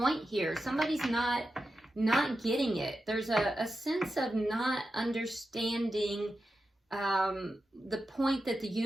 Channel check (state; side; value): normal; both; correlation 0.90